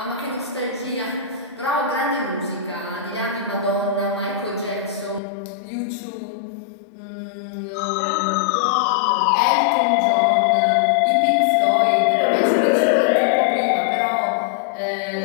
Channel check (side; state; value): right; drops out; at 5.2 s